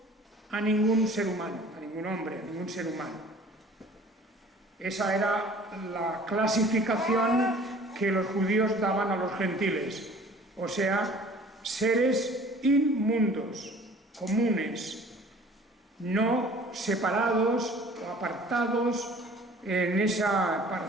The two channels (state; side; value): normal; both; correlation 0.49